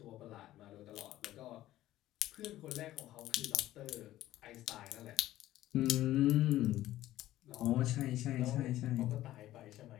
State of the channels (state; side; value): quieter; right; 14.6 dB